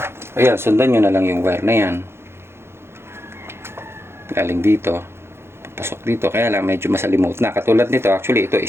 Ayan, sundan nyo na lang yung wire na yan. Galing dito. Pasok dito. Kaya lang, medyo masalimuot na. Katulad nito, actually, ito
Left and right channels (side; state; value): left; late; 0.12 ms